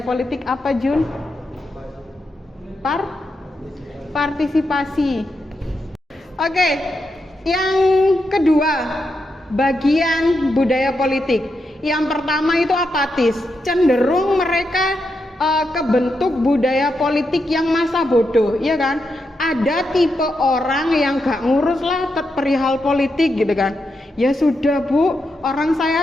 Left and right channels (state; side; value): normal; both; correlation 0.84